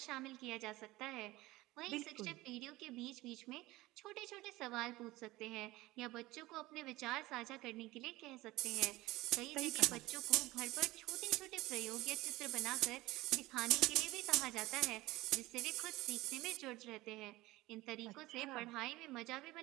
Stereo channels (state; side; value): quieter; left; 19.1 dB